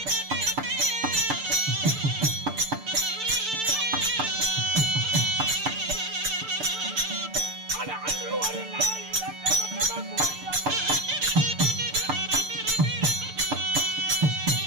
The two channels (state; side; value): late; left; 6.8 ms